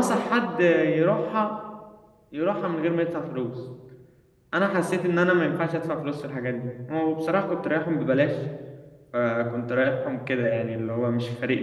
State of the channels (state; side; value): identical; both; correlation 1.00